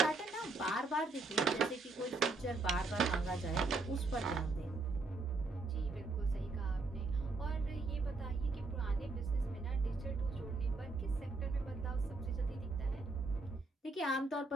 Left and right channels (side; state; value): left; quieter; 3.6 dB